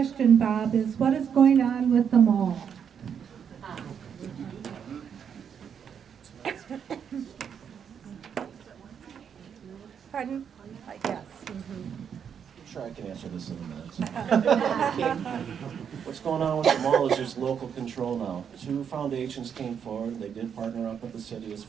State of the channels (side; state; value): left; quieter; 7.7 dB